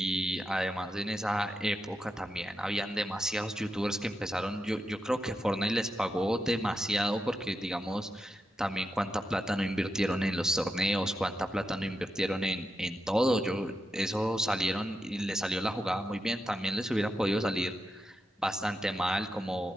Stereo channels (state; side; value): normal; both; correlation 0.86